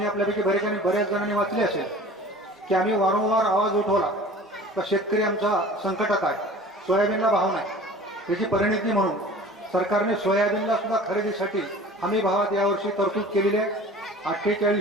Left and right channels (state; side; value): normal; both; correlation 0.43